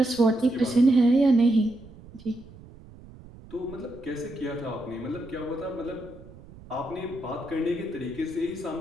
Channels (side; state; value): right; noise; rumble, 20 dB below the sound